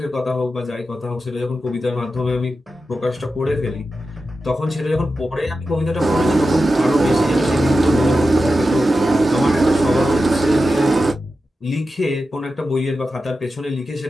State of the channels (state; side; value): normal; both; correlation 0.91